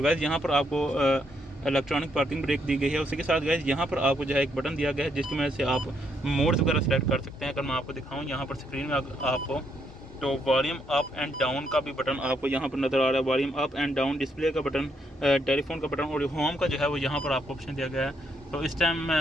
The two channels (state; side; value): normal; both; correlation 0.75